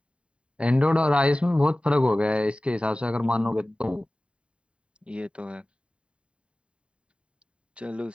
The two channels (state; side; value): late; left; 0.057 ms